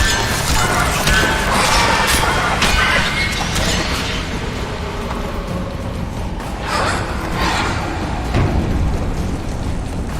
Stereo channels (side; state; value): both; identical; correlation 1.00